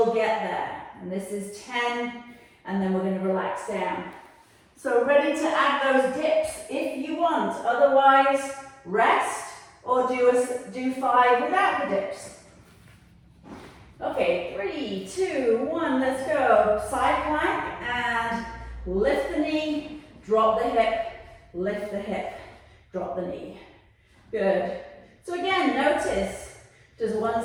get there. And this is 10, and then we're going to relax down. So ready to add those dips if you want. Otherwise, rest or do 5 without the dips. Okay, 3, 2, 1, let's go. Side plank and lift the knee, drop the hip, lift the hip, drop the knee. Good. So again, notice, does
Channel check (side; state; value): both; identical; correlation 1.00